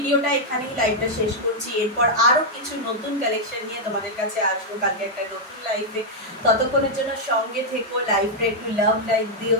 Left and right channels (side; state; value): both; normal; correlation -0.03